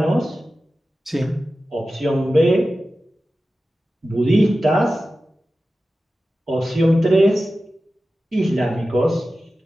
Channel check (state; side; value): normal; both; correlation 0.94